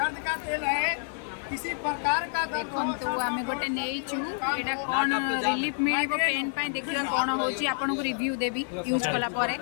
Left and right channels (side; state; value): right; silent; digital silence